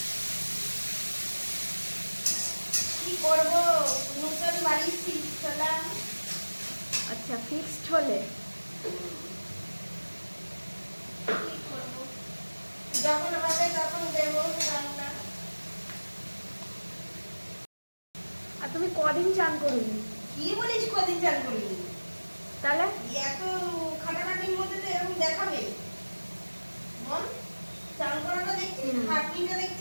কি করবো, নতুন বাড়ি শিখলাম। আচ্ছা, ফিক্সড হলে কি করবো, যখন হবে তখন দেবো রান্না। আর তুমি কদিন চান করুনি? কি বলিস কদিন চান করিনি? তাহলে এত খাটাখাটির মধ্যে তো এরকম দেখাবে মন? চান করাটা দেখছিস, খাটনিটা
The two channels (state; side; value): inverted; both; correlation -1.00